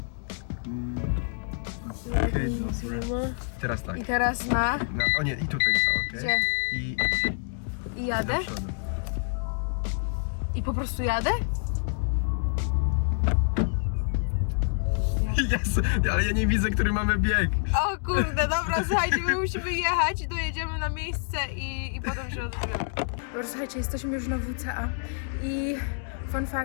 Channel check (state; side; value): silent; right; digital silence